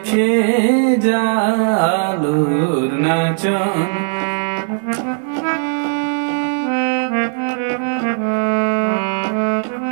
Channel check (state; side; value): silent; left; digital silence